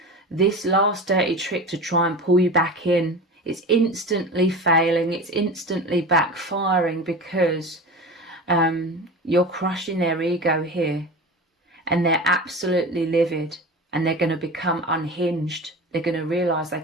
this last dirty trick to try and pull you back in, it's instantly failing, it's instantly backfiring, because you're crushing their ego here. And they're absolutely livid, and they're going to become unhinged. They're going to realise they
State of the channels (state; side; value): normal; both; correlation 0.31